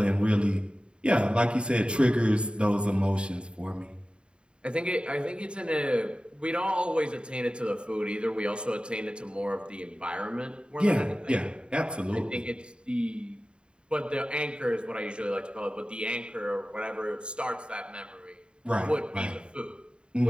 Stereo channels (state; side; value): late; left; 0.052 ms